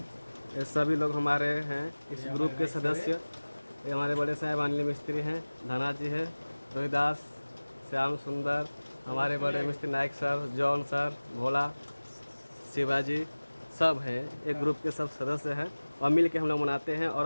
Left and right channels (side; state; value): both; inverted; correlation -1.00